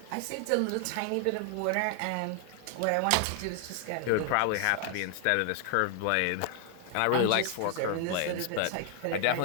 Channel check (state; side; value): different; both; correlation 0.00